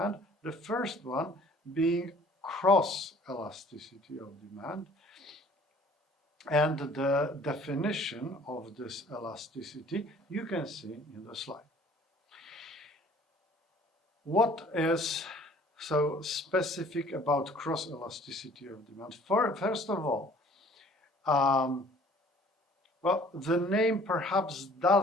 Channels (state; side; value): normal; both; correlation 0.53